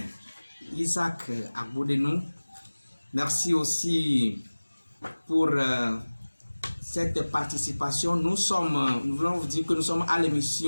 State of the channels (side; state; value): both; inverted; correlation -1.00